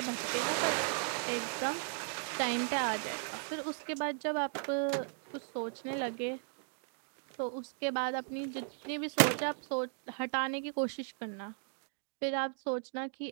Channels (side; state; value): left; silent; 53 dB below the other